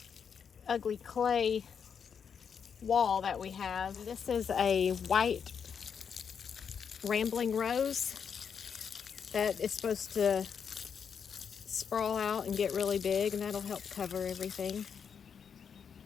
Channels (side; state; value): right; quieter; 7.0 dB